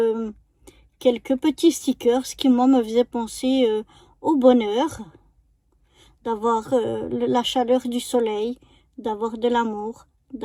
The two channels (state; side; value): identical; both; correlation 1.00